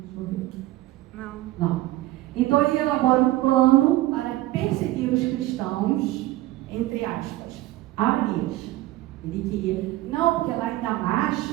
Não. Então ele elabora um plano para perseguir os cristãos, entre aspas, Ananias. Ele queria, não, porque lá em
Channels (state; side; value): quieter; left; 17.0 dB